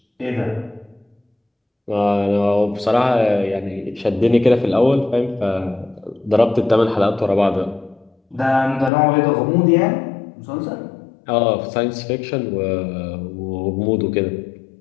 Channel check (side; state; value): right; drops out; at 8.9 s